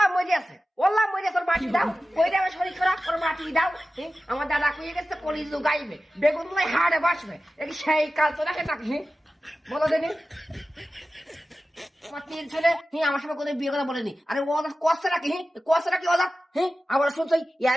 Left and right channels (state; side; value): normal; both; correlation 0.95